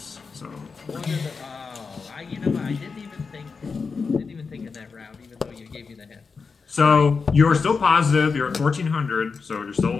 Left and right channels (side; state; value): right; quieter; 5.0 dB